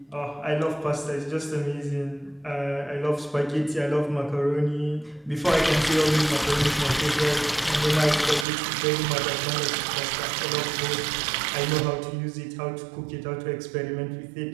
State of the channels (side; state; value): left; drops out; at 8.5 s